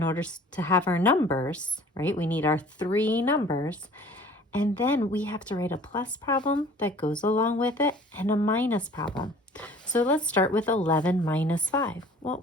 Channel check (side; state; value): both; normal; correlation 0.49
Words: order to have our numbers, right? We need our three numbers. And then we have to write a plus problem that goes along with it and a minus problem. So let's start with 11 minus 5.